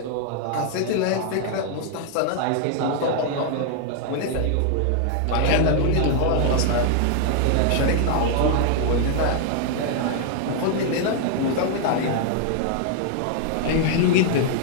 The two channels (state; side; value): different; both; correlation 0.00